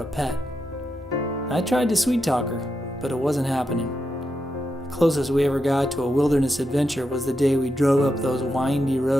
a pet. I tried to sweet talk her, but it wasn't happening. The closest we ever got to a wilderness adventure was the day we drove up those windy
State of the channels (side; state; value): both; normal; correlation 0.86